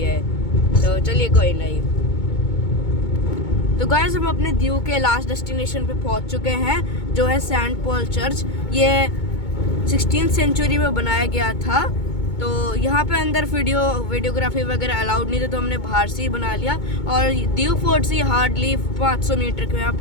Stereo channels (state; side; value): late; right; 2.2 ms